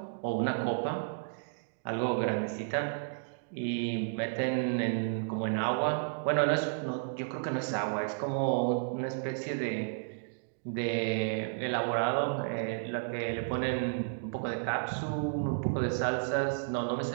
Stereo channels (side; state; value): left; silent; digital silence